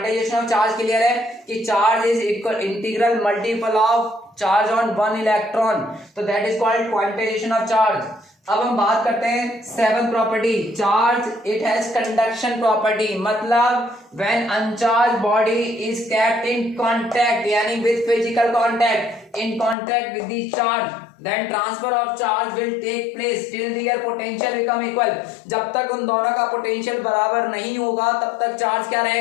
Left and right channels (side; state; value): right; drops out; at 19.8 s